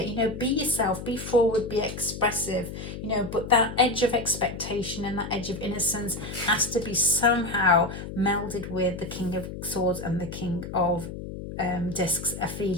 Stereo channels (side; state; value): left; noise; hum, 9 dB below the sound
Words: You know, be yourself, be forward, be expressive. You know, but that edge of expectation and that edge of innocence has to be somehow melded with the King of Swords and the King of Discs. A